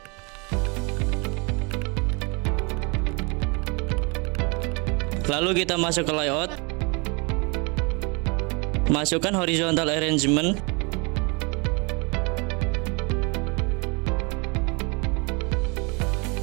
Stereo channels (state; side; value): quieter; left; 30.9 dB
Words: Lalu kita masuk ke layout, masukkan horizontal arrangement,